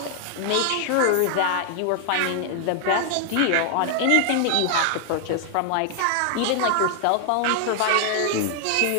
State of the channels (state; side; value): different; both; correlation 0.00